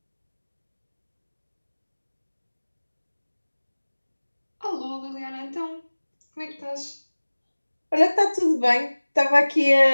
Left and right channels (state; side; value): inverted; both; correlation -1.00